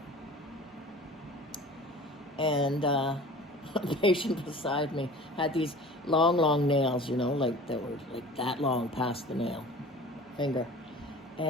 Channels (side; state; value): both; normal; correlation 0.42